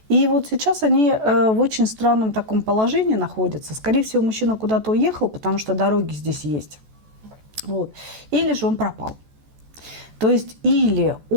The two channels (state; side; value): late; left; 14 ms